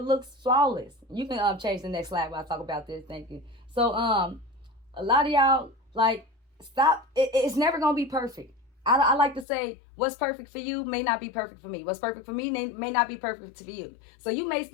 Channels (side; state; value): right; drops out; at 9.5 s